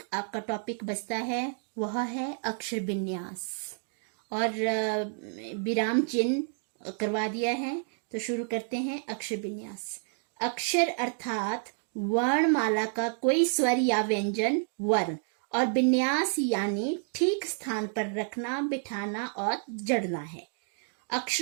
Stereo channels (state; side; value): silent; left; 58 dB below the other